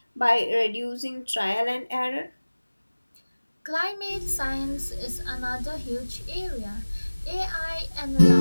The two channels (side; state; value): both; inverted; correlation -1.00